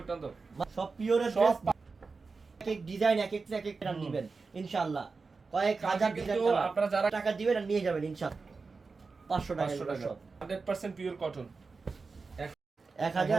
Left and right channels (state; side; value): quieter; left; 4.4 dB